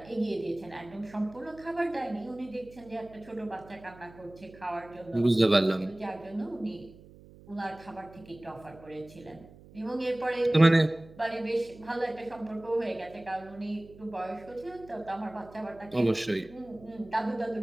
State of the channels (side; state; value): right; noise; hum, 21 dB below the sound